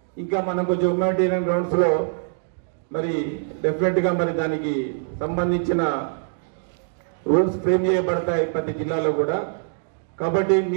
ఇంకా మనం కొంచెం హ్యూమానిటేరియన్ గ్రౌండ్స్ లో మరి డెఫినెట్ గా మరి దానికి సంబంధించిన రూల్స్ ఫ్రేమ్ చేయబడతాయి ప్రతి జిల్లాలో కూడా. కాబట్టి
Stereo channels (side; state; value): left; silent; digital silence